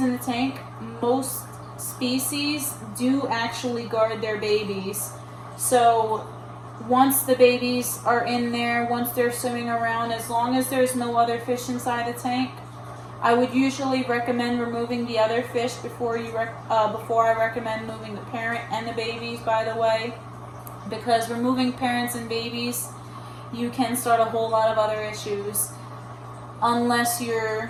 the tank, most species do actually guard their babies. So once the babies are in there, once they're swimming around, as long as there's no other fish inside the tank, I would usually recommend removing the other fish before I recommend moving the parent and the babies, by the way, because removing parents and babies, you can start a whole lot of other issues unless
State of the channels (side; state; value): both; identical; correlation 1.00